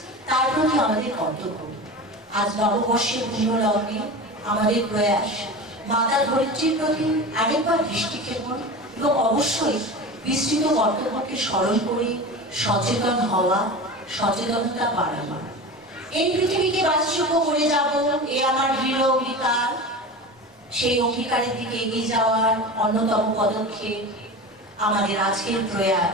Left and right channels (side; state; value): both; normal; correlation 0.30